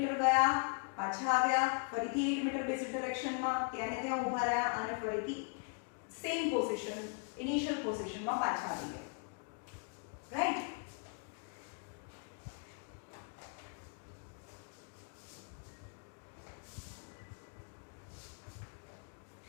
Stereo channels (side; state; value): right; quieter; 39.4 dB